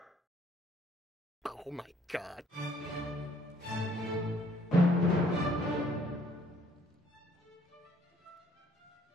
Oh my God.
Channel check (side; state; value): both; normal; correlation 0.62